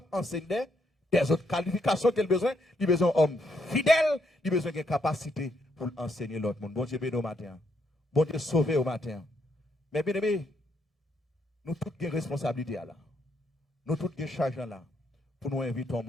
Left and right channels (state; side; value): normal; both; correlation 0.75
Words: d'enseigner des autres qualifications qu'il a besoin. Il a besoin d'hommes fidèles, il a besoin de capacité pour enseigner l'autre monde. Bon Dieu béni au matin. Bon Dieu sauvé au matin. Mais bien aimé, nous tous avons responsabilité là. Nous tous avons charge là pour nous inviter au